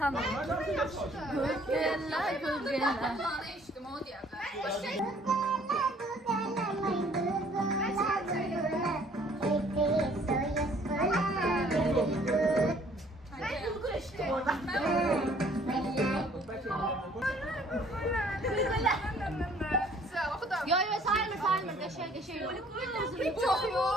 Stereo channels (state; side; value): normal; both; correlation 0.58